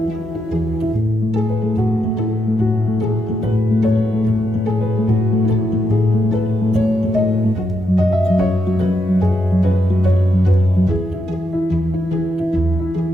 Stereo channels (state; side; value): normal; both; correlation 0.81